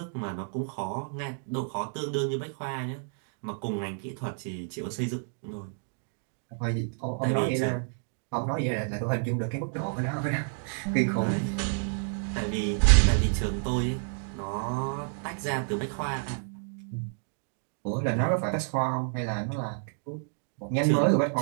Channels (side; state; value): left; silent; digital silence